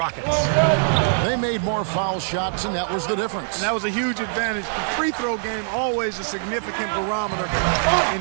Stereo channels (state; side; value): silent; left; digital silence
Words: They made more foul shots, and that was the difference. And that was a huge advantage. The free throw game always a significant barometer